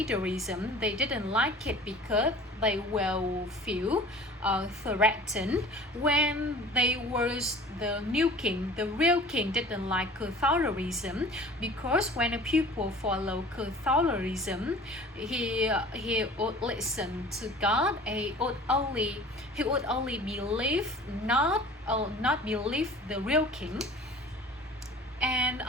They didn't like it because they will feel threatened when they was the new king. The real king didn't like Catholicism because when the people follow Catholicism, he would listen to God. He would only believe not believe the real king. And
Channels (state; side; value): normal; both; correlation 0.44